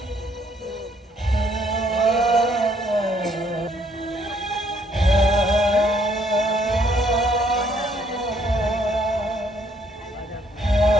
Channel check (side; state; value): both; normal; correlation 0.67